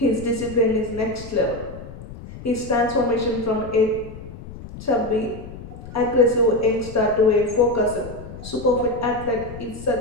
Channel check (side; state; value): left; noise; rumble, 14 dB below the sound